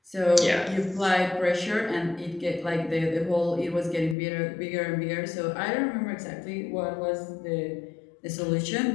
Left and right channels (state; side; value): drops out; right; at 4.2 s